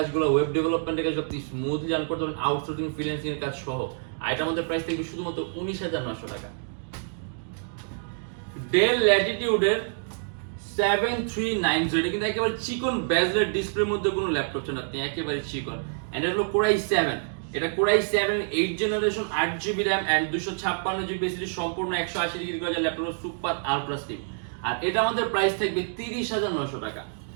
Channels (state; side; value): silent; left; digital silence